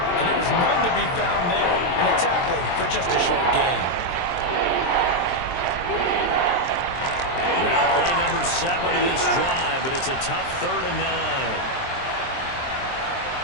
And there was none to be found there. And a tackle for just a short gain. Now play number 7 of this drive, but it's a tough 3rd and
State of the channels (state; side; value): late; right; 23 ms